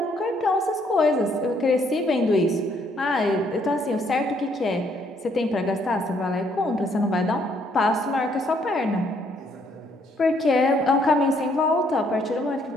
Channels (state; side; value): normal; both; correlation 0.68